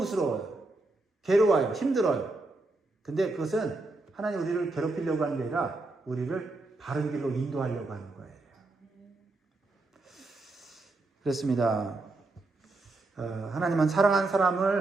괴로워요. 힘들어요. 근데 그것은 하나님 우리를 괴롭히려고 하는 게 아니라 우리를 바른 길로 인도하려고 하는 거예요. 그렇습니다. 하나님은 사랑하는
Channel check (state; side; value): quieter; left; 3.1 dB